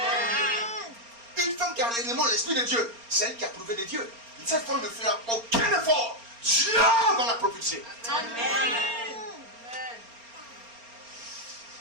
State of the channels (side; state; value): left; late; 4.3 ms